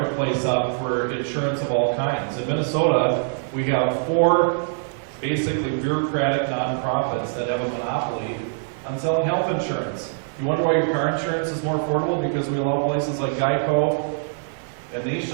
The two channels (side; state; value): left; silent; digital silence